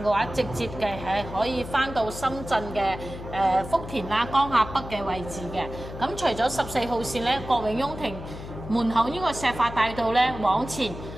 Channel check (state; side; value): noise; left; hum, 11 dB below the sound